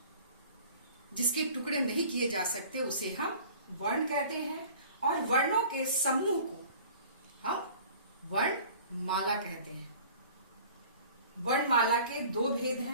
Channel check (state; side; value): inverted; both; correlation -0.46